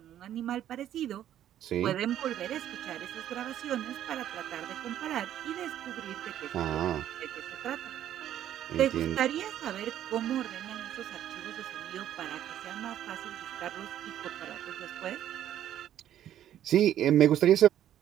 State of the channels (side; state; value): left; quieter; 11.3 dB